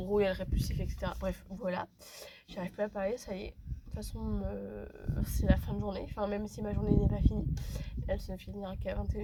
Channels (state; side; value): identical; both; correlation 1.00